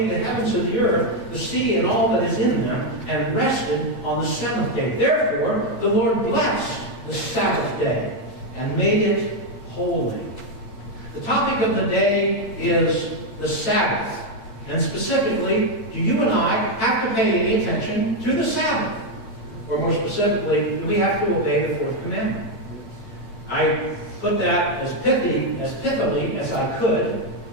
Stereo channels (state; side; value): late; right; 8.9 ms